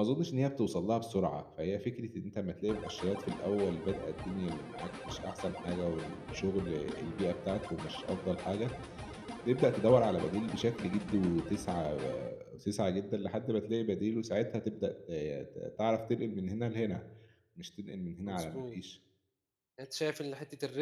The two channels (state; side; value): identical; both; correlation 1.00